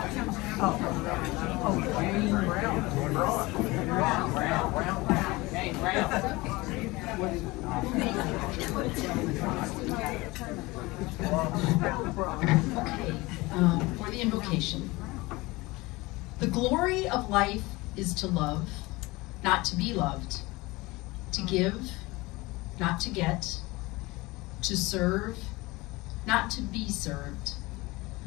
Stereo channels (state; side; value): quieter; right; 22.0 dB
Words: For the invocation. The glory of life is to love, not to be loved, to give, not to get, to serve, not to be served.